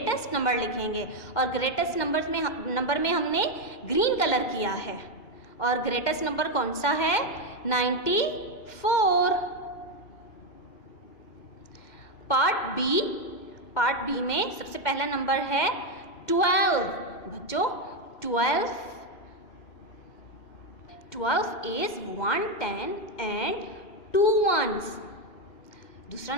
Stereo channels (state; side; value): late; right; 2.1 ms